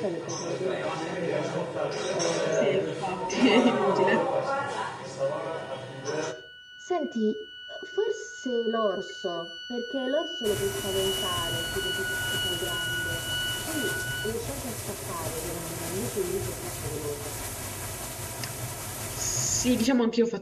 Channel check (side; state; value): both; identical; correlation 1.00